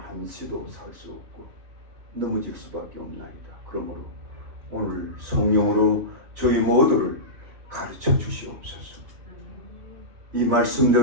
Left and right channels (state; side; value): late; left; 3.0 ms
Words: 살 수 없고 넘어질 수밖에 없나이다. 그러므로 오늘 성령으로 저희 모두를 가르쳐 주시옵소서. 이